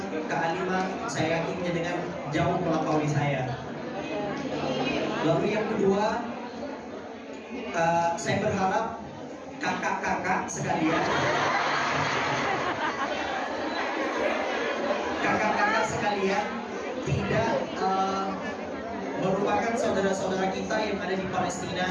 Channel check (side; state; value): both; identical; correlation 1.00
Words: kealiman, saya yakin dengan jauh melampaui saya. Lalu yang kedua, saya berharap kakak-kakak sekalian, tidak merupakan saudara-saudara kita yang ada di